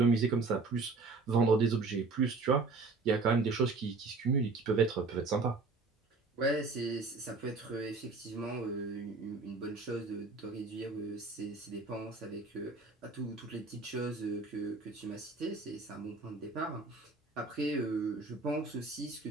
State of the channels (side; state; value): left; quieter; 3.9 dB